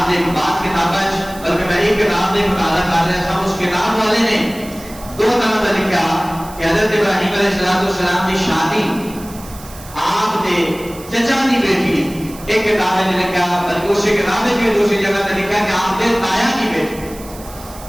نے بات کتابیں بلکہ میں ایک کتاب نے مطالعہ کر رہا تھا اس کتاب والے نے 2 طرح کا لکھا کہ حضرت ابراہیم علیہ السلام کی شادی آپ نے چچا کی بیٹی ایک کتاب نے لکھا بلکہ اسی کتاب میں دوسری جگہ نے لکھا کہ آپ نے تایا کی بیٹی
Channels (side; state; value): right; noise; hiss, 18 dB below the sound